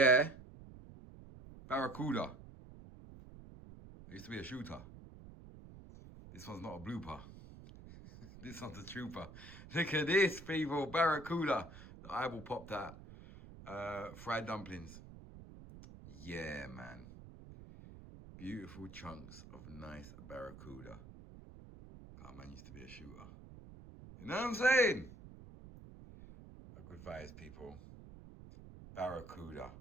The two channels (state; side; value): noise; right; rumble, 16 dB below the sound